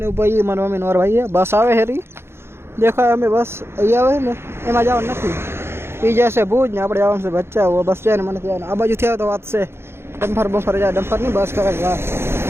ઉપર મારા મમ્મી નોર ભાઈ બસ આવે હેરી દેખાય. અમે બસ અહીંયા આવે ને એમાં જવાનું નથી, એ જશે ભુજ ને આપણે જવાનું છે બચ્ચા. બસ જાય ને મને ત્યાં આ બાજુથી આવે તો વાત છે. ડમ્ફર જાય, ડમ્ફર નહીં બસ કરે.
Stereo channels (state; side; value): late; left; 0.12 ms